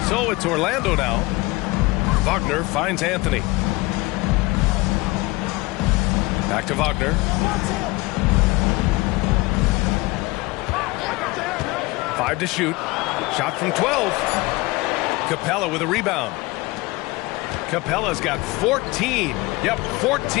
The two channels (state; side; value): quieter; right; 22.4 dB